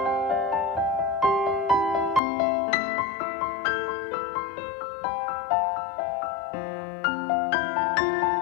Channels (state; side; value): drops out; right; at 2.2 s